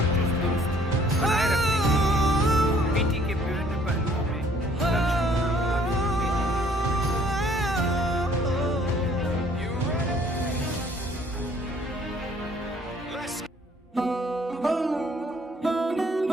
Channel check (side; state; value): both; normal; correlation 0.60